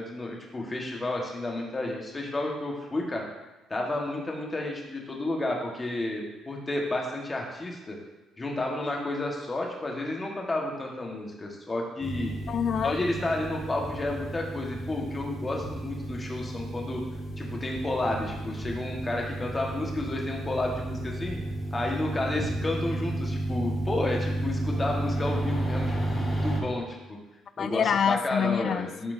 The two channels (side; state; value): both; normal; correlation 0.85